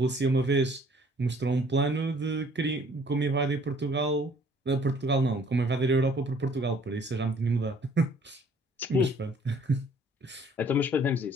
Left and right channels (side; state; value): both; normal; correlation 0.57